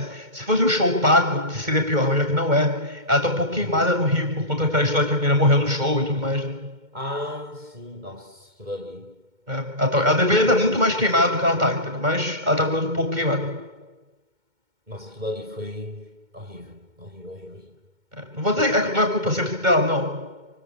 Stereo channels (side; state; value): left; late; 2.2 ms